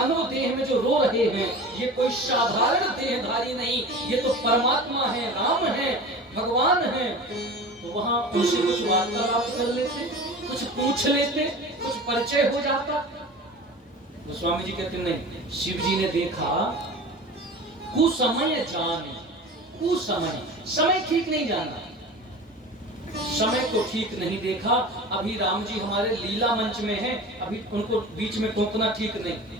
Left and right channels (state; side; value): normal; both; correlation 0.35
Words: देह में जो रो रहे हैं, ये कोई साधारण देहधारी नहीं, ये तो परमात्मा है, राम है, भगवान है, तो वहां उनसे कुछ वार्तालाप कर लेते, कुछ पूछ लेते, कुछ परिचय हो जाता। तो स्वामी जी कहते नहीं, शिव जी ने देखा कुसमय जाने, कुसमय, समय ठीक नहीं जाना, समय को ठीक नहीं देखा। अभी राम जी हमारे लीला मंच में हैं, अभी उनको बीच में टोकना ठीक नहीं।